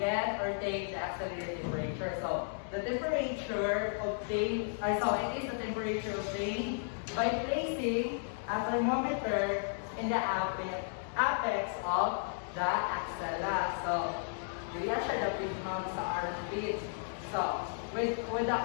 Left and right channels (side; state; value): right; silent; digital silence